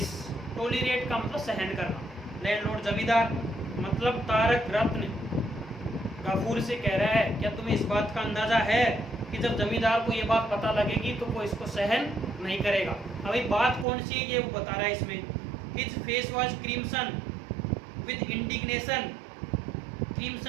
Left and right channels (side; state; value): left; drops out; at 13.9 s